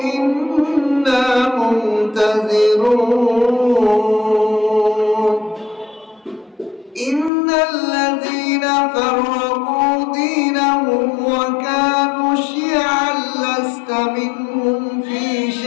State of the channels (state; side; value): drops out; right; at 7.3 s